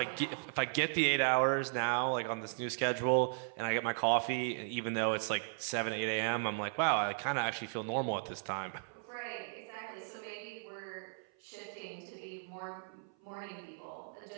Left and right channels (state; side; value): silent; left; 54 dB below the other